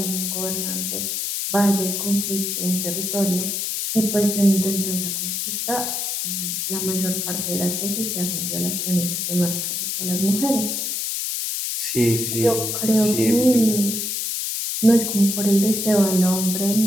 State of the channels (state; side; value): noise; left; hiss, 2 dB below the sound